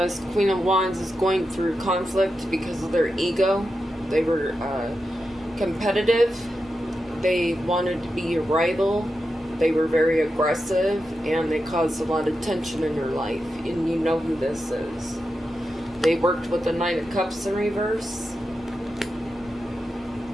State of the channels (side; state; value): both; normal; correlation 0.89